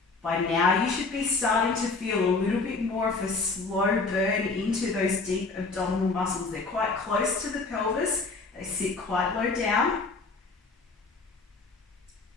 By now, you should be starting to feel a little bit more of a slow burn into those deep abdominal muscles. They're quite close to the pelvis. They sit quite low down.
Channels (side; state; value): right; quieter; 3.9 dB